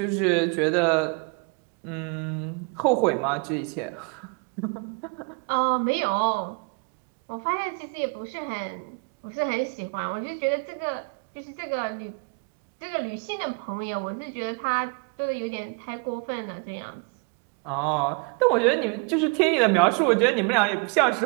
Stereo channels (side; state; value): left; quieter; 34.7 dB